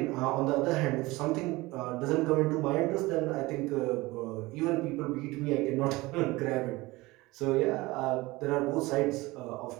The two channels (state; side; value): quieter; left; 21.1 dB